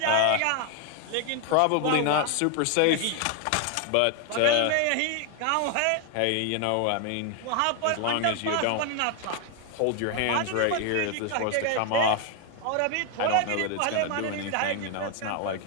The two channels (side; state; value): both; different; correlation 0.01